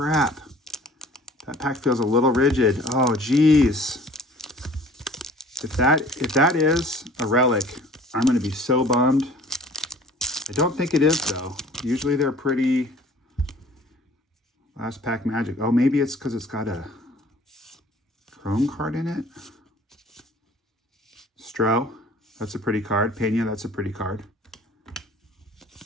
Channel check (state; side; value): normal; both; correlation 0.50